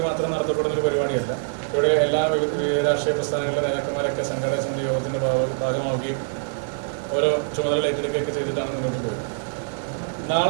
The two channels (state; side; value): silent; left; digital silence